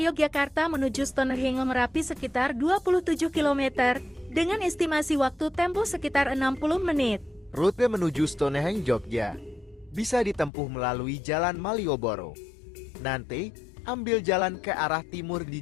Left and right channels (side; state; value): right; drops out; at 10.5 s